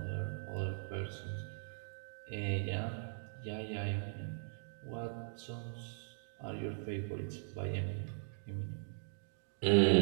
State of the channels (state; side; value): silent; left; digital silence